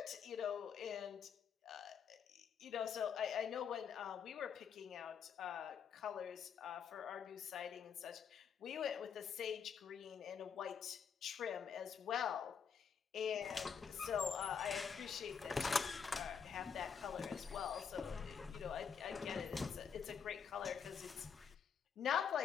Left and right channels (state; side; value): quieter; right; 6.8 dB